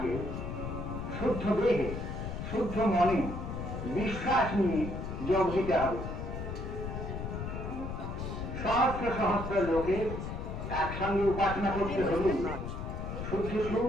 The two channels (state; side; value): noise; left; rumble, 5 dB below the sound